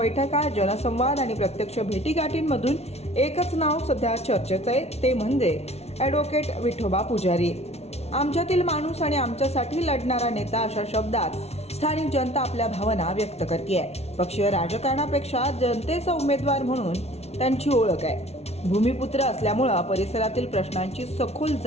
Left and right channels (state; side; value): late; right; 0.31 ms